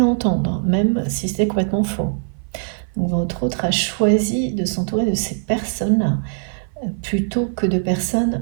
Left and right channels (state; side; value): silent; left; 55 dB below the other